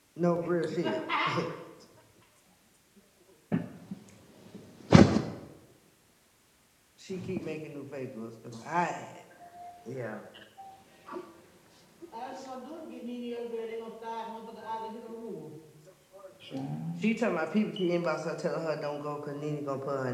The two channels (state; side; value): identical; both; correlation 1.00